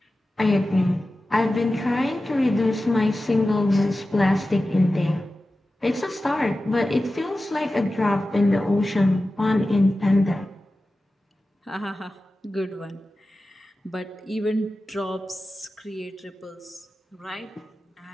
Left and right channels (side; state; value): both; normal; correlation 0.94